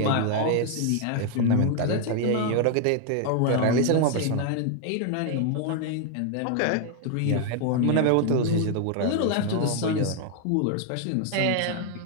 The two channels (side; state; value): both; different; correlation 0.00